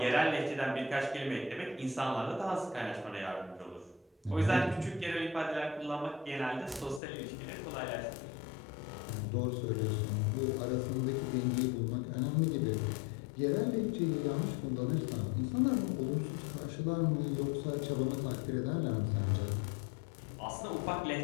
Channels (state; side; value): drops out; right; at 7.0 s